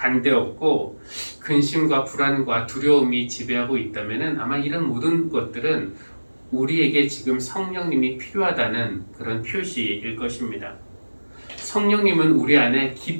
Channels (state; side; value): inverted; both; correlation -1.00